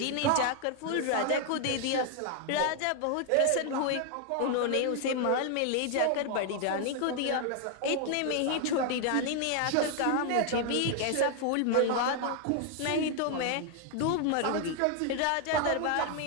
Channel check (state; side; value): different; both; correlation 0.00